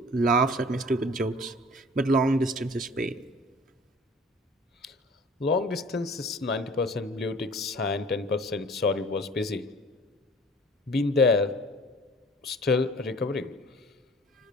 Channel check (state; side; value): normal; both; correlation 0.48